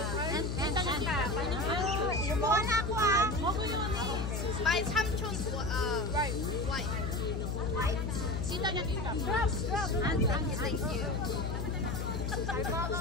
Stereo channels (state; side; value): noise; left; hum, 1 dB below the sound